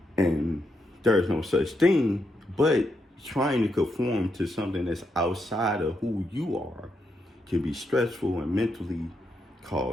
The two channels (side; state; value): both; normal; correlation 0.82